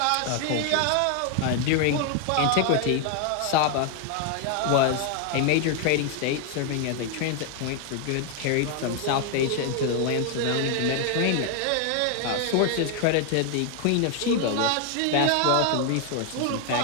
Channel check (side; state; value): both; different; correlation 0.00